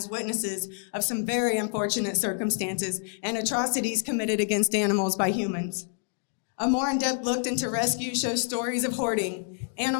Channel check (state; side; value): silent; right; 58 dB below the other